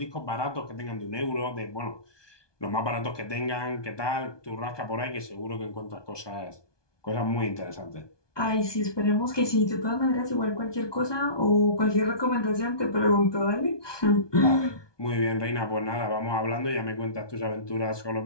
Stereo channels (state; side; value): late; right; 1.2 ms